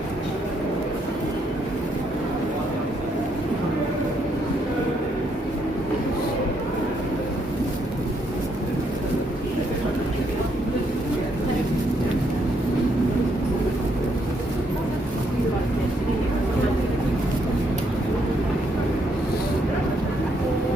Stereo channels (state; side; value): normal; both; correlation 0.74